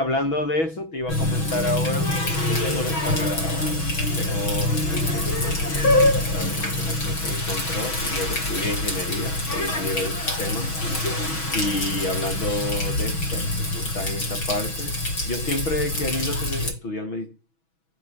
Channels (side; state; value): right; late; 6.2 ms